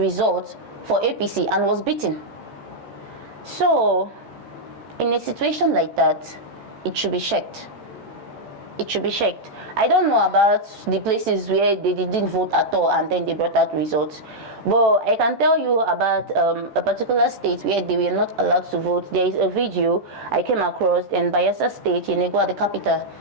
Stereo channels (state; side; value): late; left; 14 ms